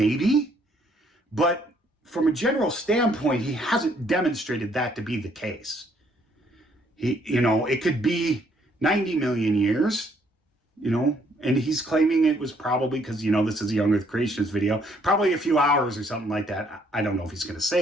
But from a general standpoint, he hasn't demonstrated that to be the case. It could be 90 million years, and he's claiming it was probably because, this is a Young Earth Creationist video, probably a few hours or something like that. I don't know if he's going to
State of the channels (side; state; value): both; normal; correlation 0.67